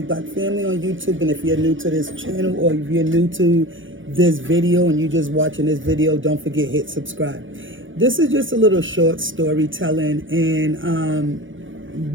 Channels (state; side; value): late; left; 0.57 ms